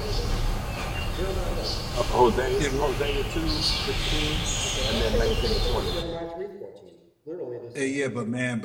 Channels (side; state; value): both; identical; correlation 1.00